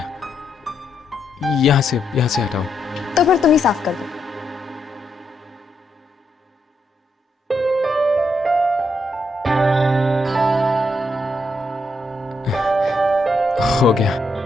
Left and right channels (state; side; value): normal; both; correlation 0.79